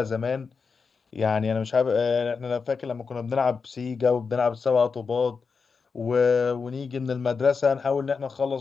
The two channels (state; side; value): quieter; right; 5.2 dB